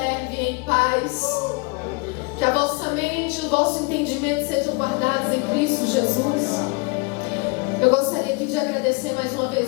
em paz. Que a vossa mente e o vosso entendimento sejam guardados em Cristo Jesus. Eu gostaria aqui de agradecer mais uma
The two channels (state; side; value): quieter; right; 28.9 dB